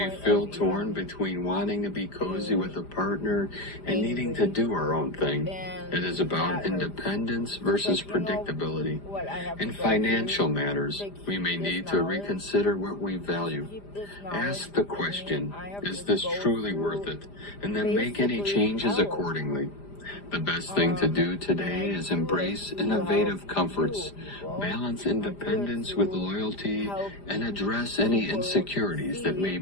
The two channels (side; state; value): right; late; 5.0 ms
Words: feel torn between wanting to be cozy with a partner and needing to do our own thing. It is about independence versus predictability. In financial matters, we may need to reconsider what we value. Ask the question, is this truly worth it? And then make any changes accordingly. The best thing to do today is embrace innovative comforts, balance independence with loyalty, and address any insecurities that may